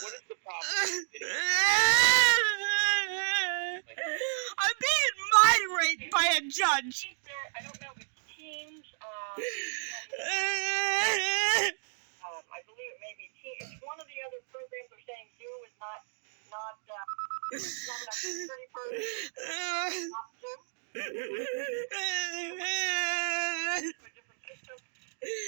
the problem? I'm being mind raped by a judge. I don't know if it's Teams. I believe it may be Teams. It's one of the other programs they're saying Zoom is not enough security for not Zoom. A different system.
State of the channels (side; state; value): left; silent; digital silence